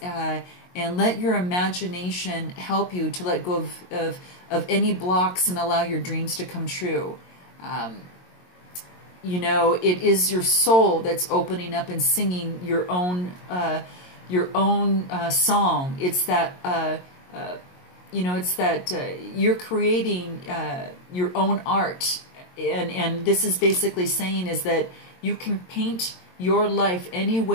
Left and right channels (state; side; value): late; right; 22 ms